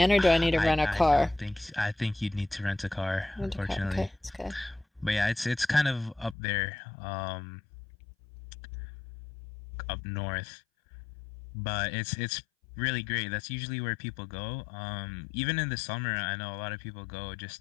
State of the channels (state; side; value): drops out; right; at 6.4 s